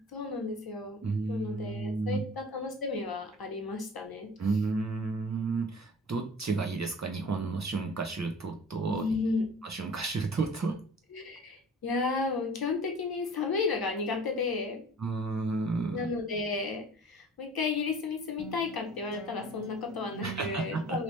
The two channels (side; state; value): both; normal; correlation 0.44